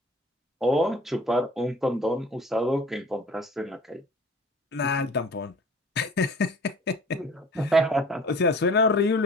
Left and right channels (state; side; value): normal; both; correlation 0.46